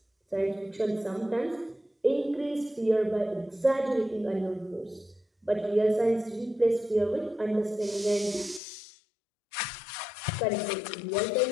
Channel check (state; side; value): drops out; right; at 8.6 s